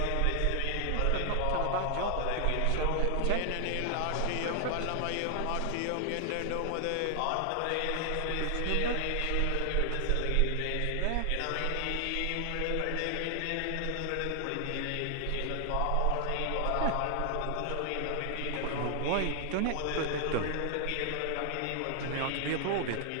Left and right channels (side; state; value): both; different; correlation 0.00